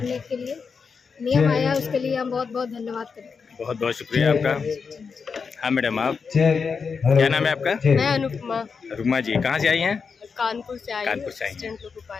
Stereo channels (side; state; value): right; quieter; 5.5 dB